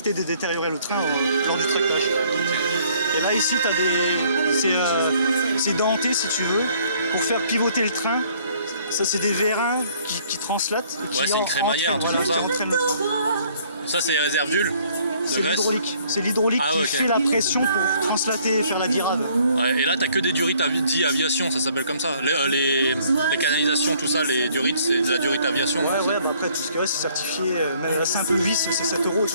de détériorer le train lors du tractage. Et là, ici, tu as c'est denté, si tu veux, pour faire pivoter le train. Ça, c'est des vérins qui translatent. Et qui Ouais, c'est une crémaillère, entraînent, tout comme ça. qui entraînent le train. Ça, c'est les réserves d'huile de C'est graisse. l'hydraulique. C'est l'hydraulique Ah qui ouais, ok. fait la pression pour translater et faire la virade. Ouais, et là, t'as que des durites dit aviation, ça s'appelle comme ça. Les canalisations, tout ça, les durites, c'est de la durite aviation. Ouais, bah après, tout ce qui reste, c'est certifié. Même la simple vis, c'est 7 €, tu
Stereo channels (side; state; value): both; inverted; correlation -0.61